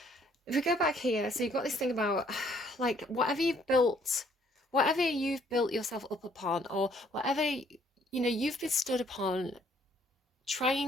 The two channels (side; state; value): both; normal; correlation 0.64